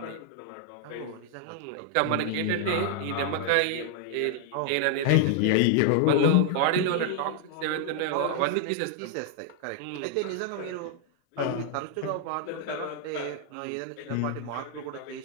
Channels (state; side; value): different; both; correlation 0.00